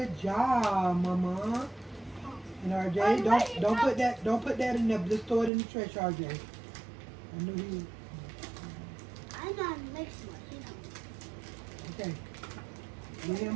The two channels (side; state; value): left; drops out; at 5.5 s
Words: job, Mama. And RJ, don't put that in there. Just throw it in the trash, RJ. I knew he. I'm not mixing it, you know. Okay. Give him